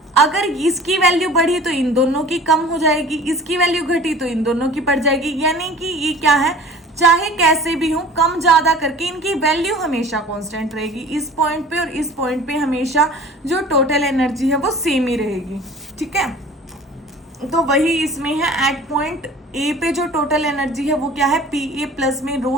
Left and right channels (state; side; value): normal; both; correlation 0.44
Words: अगर इसकी वैल्यू बढ़ी तो इन दोनों की कम हो जाएगी, इसकी वैल्यू घटी तो इन दोनों की बढ़ जाएगी। यानी कि ये क्या है, चाहे कैसे भी हो, कम ज्यादा करके इनकी वैल्यू हमेशा कांस्टेंट रहेगी। इस पॉइंट पे और इस पॉइंट पे हमेशा जो टोटल एनर्जी है वो सेम ही रहेगी, ठीक है। तो वही इसमें है, एट पॉइंट ए पे जो टोटल एनर्जी है वो क्या है, पी ए प्लस में